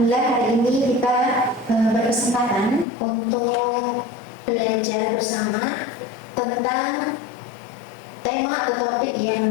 hari ini kita berkesempatan untuk belajar bersama tentang tema atau topik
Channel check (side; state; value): right; drops out; at 2.9 s